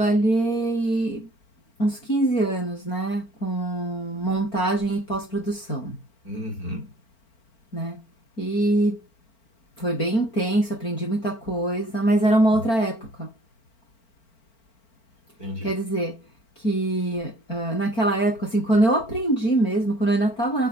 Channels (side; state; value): right; late; 4.4 ms